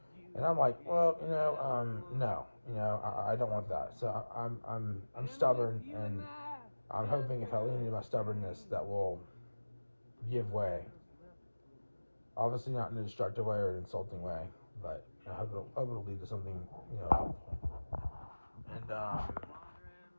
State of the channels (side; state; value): both; inverted; correlation -1.00